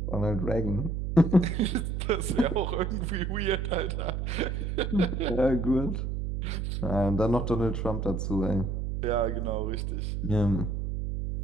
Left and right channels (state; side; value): noise; right; hum, 2 dB below the sound